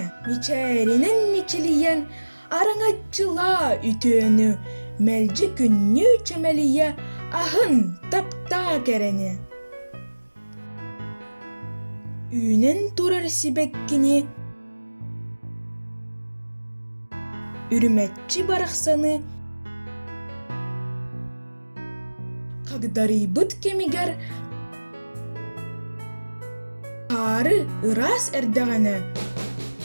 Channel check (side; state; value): both; inverted; correlation -1.00